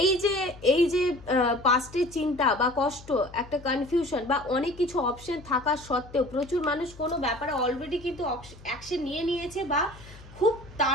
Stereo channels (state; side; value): noise; left; hum, 20 dB below the sound